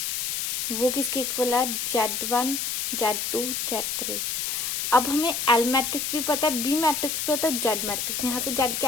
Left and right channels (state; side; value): noise; left; hiss, 1 dB below the sound